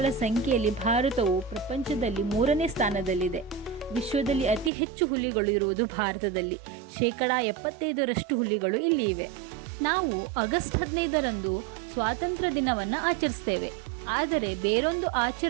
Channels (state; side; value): drops out; left; at 4.7 s